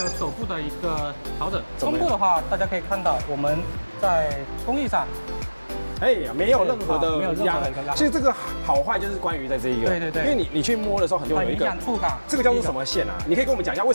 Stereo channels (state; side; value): inverted; both; correlation -1.00